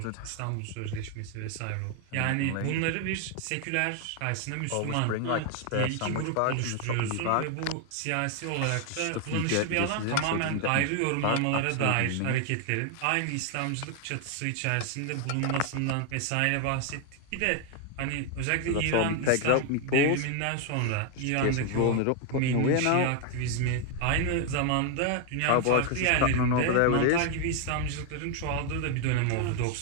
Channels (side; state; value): both; different; correlation 0.00